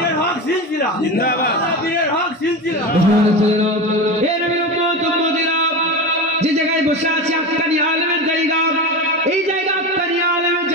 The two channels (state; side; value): normal; both; correlation 0.24